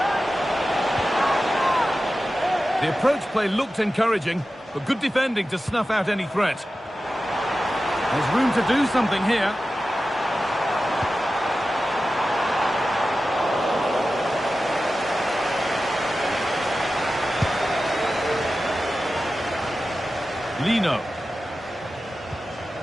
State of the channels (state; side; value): normal; both; correlation 0.94